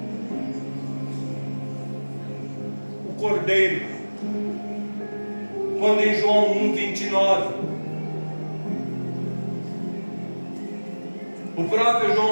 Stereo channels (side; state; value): both; inverted; correlation -1.00